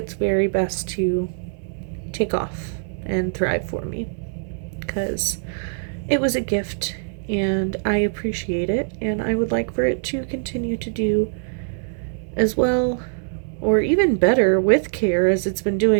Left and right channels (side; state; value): left; silent; 64 dB below the other